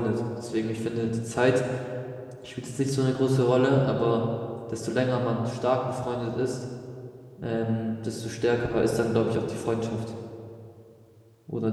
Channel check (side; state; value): both; identical; correlation 1.00